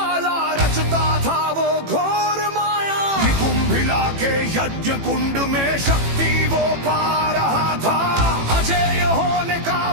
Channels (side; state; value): left; late; 18 ms